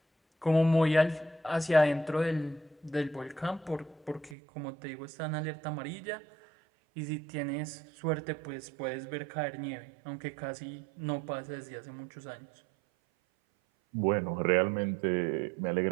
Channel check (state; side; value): drops out; left; at 4.4 s